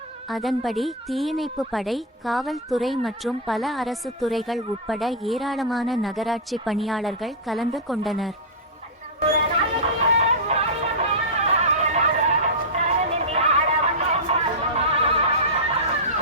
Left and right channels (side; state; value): both; normal; correlation -0.08